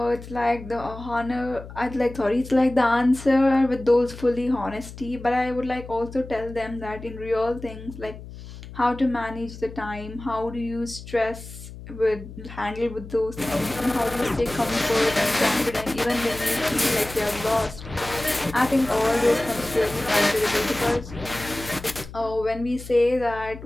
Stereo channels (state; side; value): noise; left; hum, 14 dB below the sound